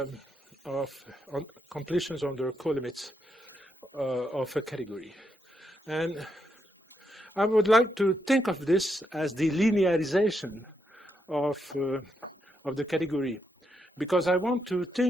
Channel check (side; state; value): both; normal; correlation 0.81